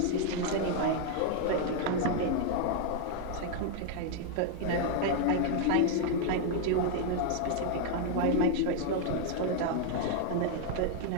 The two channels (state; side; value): different; both; correlation 0.00